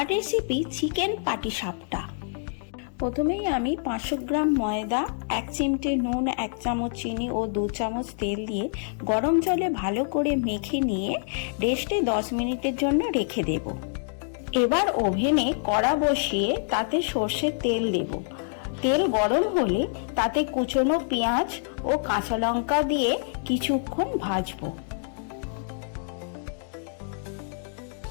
রেসিপি চিকেন পাটিসাপটা। প্রথমেই আমি 500 গ্রাম ময়দা, 1 চিমটে নুন, 1 চামচ চিনি ও 2 চামচ তেল দিয়ে গরম জলে ভালো করে মেখে নিয়ে রেস্টে 10 মিনিটের জন্য রেখে দেব। এবার ওভেনে কড়া বসিয়ে তাতে সর্ষের তেল দেব। তেল গরম হলে তাতে কুচনো পেঁয়াজ ও কাঁচা লঙ্কা দিয়ে কিছুক্ষণ ভাজবো।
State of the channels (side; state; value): right; silent; digital silence